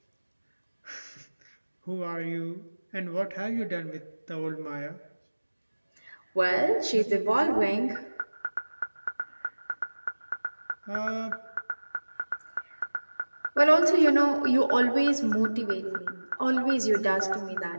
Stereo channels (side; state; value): both; inverted; correlation -1.00